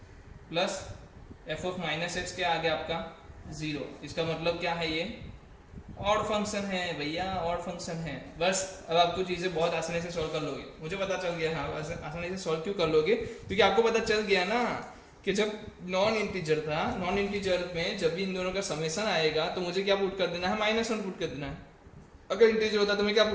plus f of minus x क्या आ गया आपका जीरो। इसका मतलब क्या है, ये ऑड फंक्शन है भैया, ऑड फंक्शन है। बस अब आपको चीजें बहुत आसानी से सॉल्व कर लोगे, मुझे पता चल गया। हाँ आसानी से सॉल्व क्यों कर लोगे, क्योंकि आपको पता चल गया ना कि जब नॉन इंटीजर था, नॉन इंटीजर में जब भी इन दोनों का समेशन आएगा तो मुझे क्या पुट कर देना है, माइनस वन पुट कर देना है। अगर इंटीजर होता तो मैं क्या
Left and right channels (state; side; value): identical; both; correlation 1.00